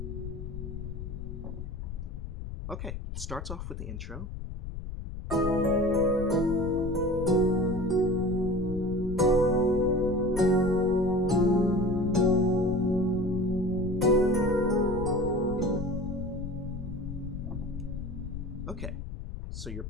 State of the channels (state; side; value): noise; left; rumble, 8 dB below the sound